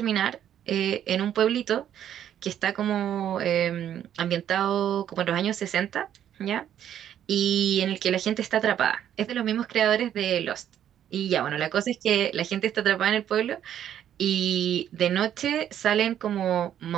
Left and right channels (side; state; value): left; quieter; 10.3 dB